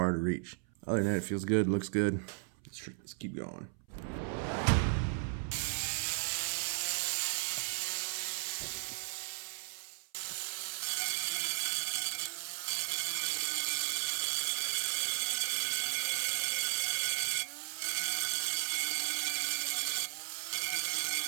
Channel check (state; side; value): silent; left; 54 dB below the other